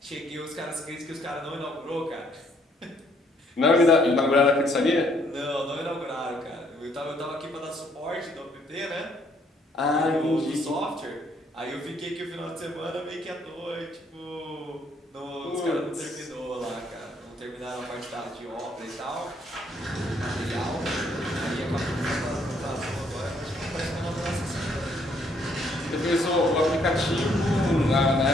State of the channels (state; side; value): normal; both; correlation 0.67